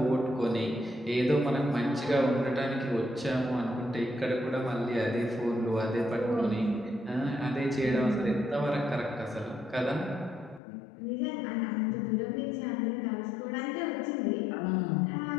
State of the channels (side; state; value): right; drops out; at 10.6 s